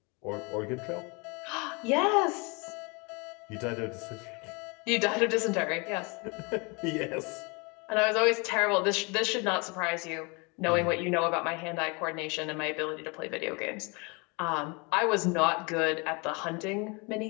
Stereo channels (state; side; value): quieter; right; 30.1 dB